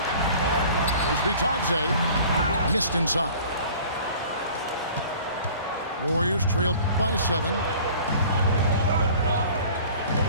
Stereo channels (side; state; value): both; inverted; correlation -0.47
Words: Here's Batadze. Missed inside. Warriors trailed by 7.